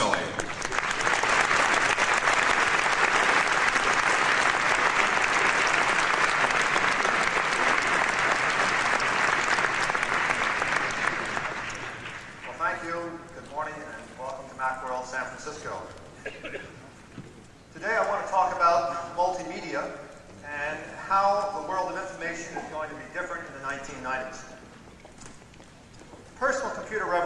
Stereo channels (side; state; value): both; identical; correlation 1.00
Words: Well, thank you. Good morning and welcome to MACWORLD San Francisco. Today I want to talk about multimedia and how the world of information is going to be different in the 1990s. The personal computer